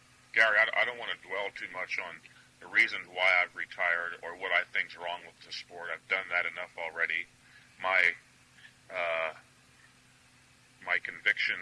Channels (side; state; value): both; identical; correlation 1.00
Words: Gary, I don't want to dwell too much on the reasons why I've retired or what I think's wrong with the sport. I've done that enough already. My